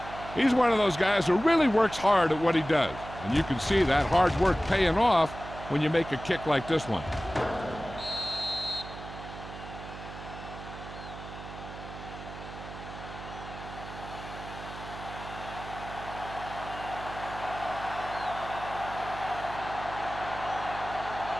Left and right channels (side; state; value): right; noise; hum, 12 dB below the sound